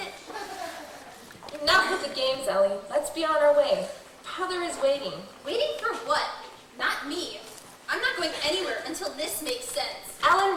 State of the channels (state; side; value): identical; both; correlation 1.00